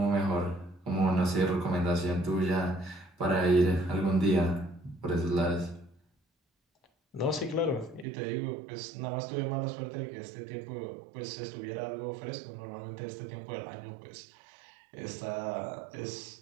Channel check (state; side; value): drops out; left; at 8.1 s